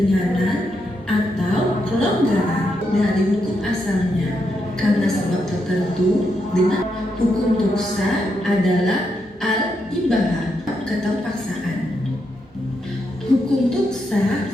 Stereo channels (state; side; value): normal; both; correlation 0.81